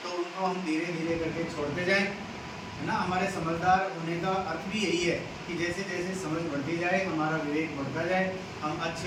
तो उनको हम धीरे धीरे करके छोड़ते जाएं, है ना। हमारे समझदार होने का अर्थ भी यही है कि जैसे जैसे समझ बढ़ती जाए, हमारा विवेक बढ़ता जाए, हम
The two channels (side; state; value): both; identical; correlation 1.00